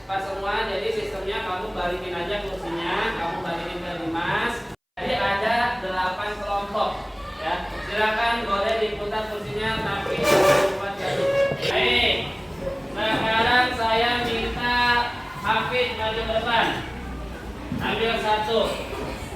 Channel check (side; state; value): both; identical; correlation 1.00